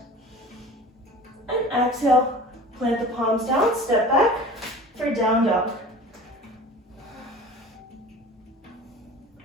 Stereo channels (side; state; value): both; normal; correlation 0.40